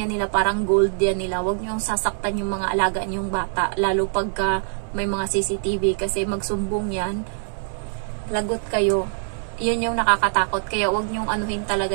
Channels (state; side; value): silent; left; 63 dB below the other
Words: nila, parang gold yan nila. Wag nyo sasaktan yung mga alaga yung bata. Lalo pagka may mga CCTV. Kasi magsumbong yan. Lagot kayo. Yun yung nakakatakot. Kaya wag nyo anuhin talaga